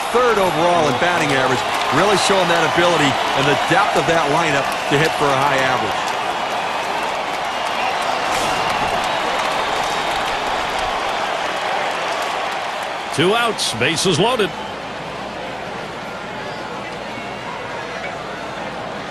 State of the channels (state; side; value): identical; both; correlation 1.00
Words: 3rd overall in batting average, really showing that ability and the depth of that lineup to hit for a high average. Two outs, bases loaded.